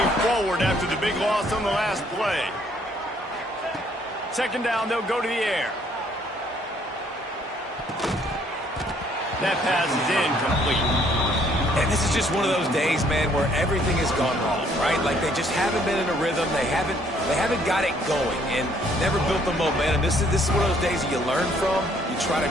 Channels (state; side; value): normal; both; correlation 0.64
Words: forward after the big loss on the last play. Second down, they'll go to the air. That pass is incomplete. And this is just one of those days, man, where everything has gone wrong, right? Like they just haven't been in a rhythm. They haven't got it going and never built the momentum. This is one of those days that you learn from, you try to